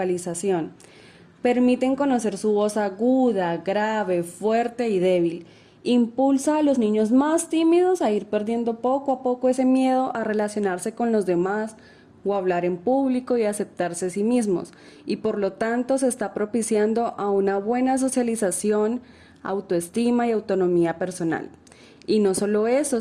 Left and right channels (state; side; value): identical; both; correlation 1.00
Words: Permiten conocer su voz aguda, grave, fuerte y débil. Impulsa a los niños más tímidos a ir perdiendo poco a poco ese miedo a relacionarse con los demás o hablar en público y aceptarse a sí mismos, y por lo tanto se está propiciando a una buena socialización, autoestima y autonomía personal. Y no solo eso,